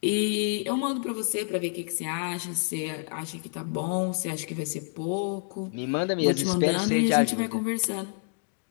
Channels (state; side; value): silent; right; 59 dB below the other